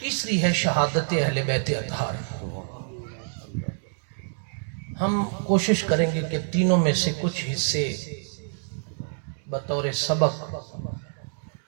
ہے شہادت اہل بیت اطہار. ہم کوشش کریں گے کہ تینوں میں سے کچھ حصے بطور سبق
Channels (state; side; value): silent; left; digital silence